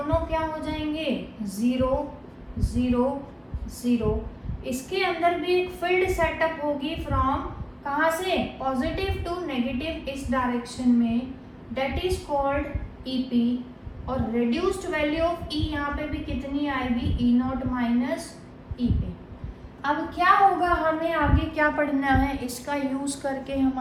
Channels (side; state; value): both; identical; correlation 1.00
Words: क्या हो जाएंगे, 0 0 0। इसके अंदर भी एक फील्ड सेटअप होगी फ्रॉम कहाँ से, पॉजिटिव टू नेगेटिव इस डायरेक्शन में, दैट इज कॉल्ड ईपी। और रिड्यूस्ड वैल्यू ऑफ ई यहाँ पे भी कितनी आएगी, ई नॉट माइनस ईपी। अब क्या होगा, हमें आगे क्या पढ़ना है, इसका यूज करके